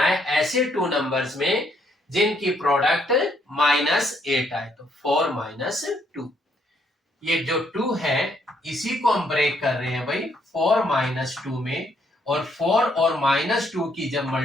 है ऐसे टू नंबर्स में जिनकी प्रोडक्ट माइनस 8 आए। तो 4 माइनस 2, ये जो 2 है इसी को हम ब्रेक कर रहे हैं भाई 4 माइनस 2 में। और 4 और माइनस 2 की जब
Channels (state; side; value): normal; both; correlation 0.71